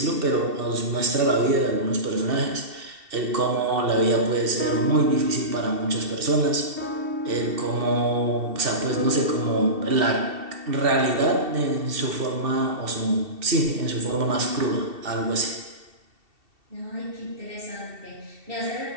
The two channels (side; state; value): left; late; 2.7 ms